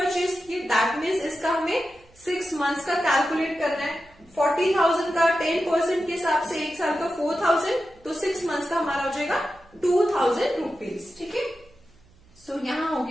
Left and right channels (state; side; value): noise; right; hum, 29 dB below the sound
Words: की, दैट मीन्स इसका हमें 6 मंथ्स का कैलकुलेट करना है। 40,000 का 10% के हिसाब से एक साल का 4,000, तो 6 मंथ्स का हमारा हो जाएगा 2,000 रुपीज, ठीक है। सो यहां हो